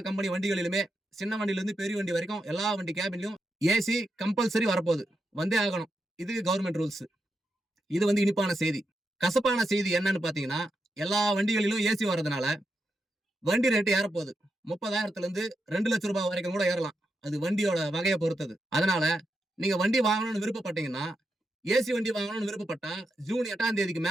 கம்பெனி வண்டிகளிலுமே சின்ன வண்டியில இருந்து பெரிய வண்டி வரைக்கும் எல்லா வண்டி கேபின்லயும் ஏசி கம்பல்சரி வரப்போகுது. வந்தே ஆகணும். இது கவர்மெண்ட் ரூல்ஸ். இது இனிப்பான செய்தி. கசப்பான செய்தி என்னன்னு பாத்தீங்கன்னா, எல்லா வண்டிகளிலும் ஏசி வர்றதுனால வண்டி ரேட்டு ஏறப்போகுது. 30,000 இருந்து 2 லட்சம் ரூபாய் வரைக்கும் கூட ஏறலாம். அது வண்டியோட வகையை பொறுத்தது. அதனால நீங்க வண்டி வாங்கணும்னு விருப்பப்பட்டீங்கன்னா, ஏசி வண்டி வாங்கணும்னு விருப்பப்பட்டா ஜூன் 8ஆம் தேதிக்கு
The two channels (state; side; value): normal; both; correlation 0.85